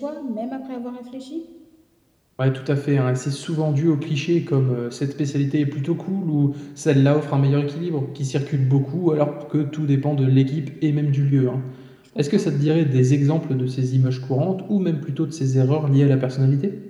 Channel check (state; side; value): identical; both; correlation 1.00